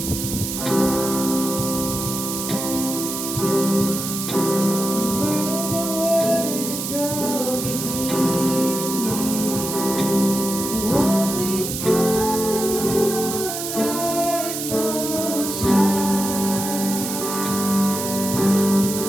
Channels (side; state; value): right; noise; hiss, 5 dB below the sound